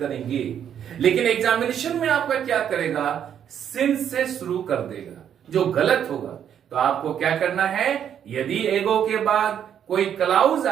लेकिन एग्जामिनेशन में आपका क्या करेगा? सिंस से शुरू कर देगा, जो गलत होगा। तो आपको क्या करना है? यदि एगो के बाद कोई क्लाउज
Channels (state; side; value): quieter; left; 9.1 dB